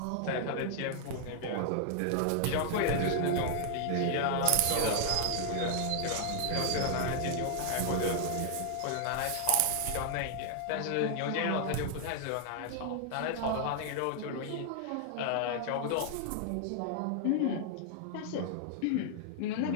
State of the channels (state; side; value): different; both; correlation 0.00